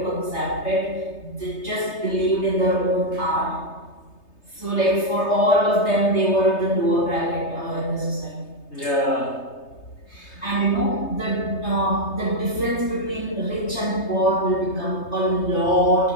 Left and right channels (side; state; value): right; late; 3.3 ms